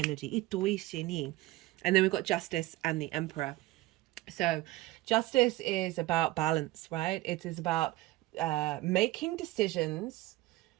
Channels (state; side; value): quieter; left; 18.0 dB